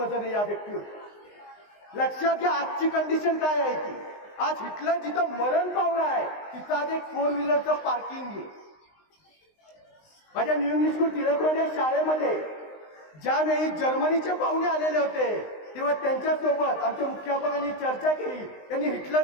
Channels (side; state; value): right; late; 19 ms